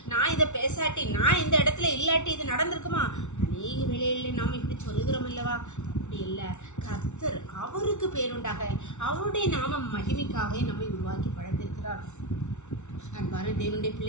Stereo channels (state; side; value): late; right; 0.83 ms